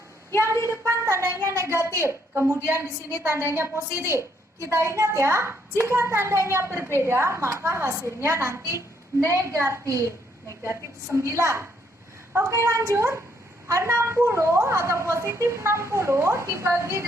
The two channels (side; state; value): both; normal; correlation 0.71